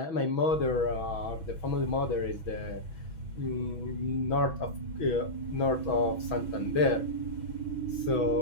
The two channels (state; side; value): late; right; 6.2 ms